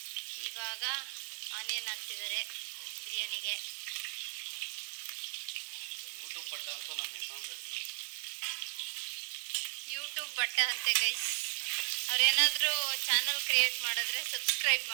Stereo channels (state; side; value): silent; left; 54 dB below the other